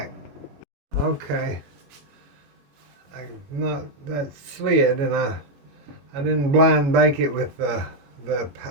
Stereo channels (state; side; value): late; left; 21 ms